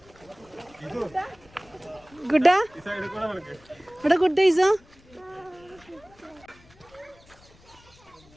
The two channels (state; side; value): noise; left; rumble, 27 dB below the sound